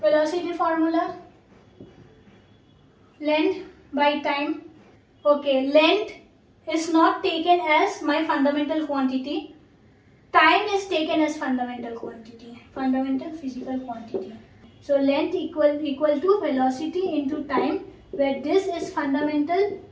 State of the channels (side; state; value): both; identical; correlation 1.00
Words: Velocity formula, length by time. Okay, length is not taken as my fundamental quantity. Time is taken as fundamental quantity, fundamental physical quantity. So length equal to velocity into time, where this is fundamental,